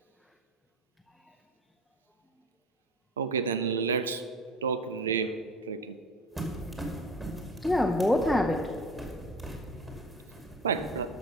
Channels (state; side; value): normal; both; correlation 0.36